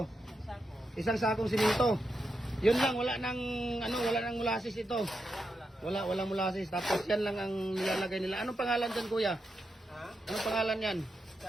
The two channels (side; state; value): both; normal; correlation 0.86